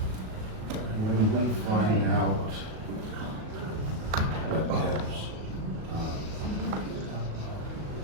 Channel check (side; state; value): left; late; 37 ms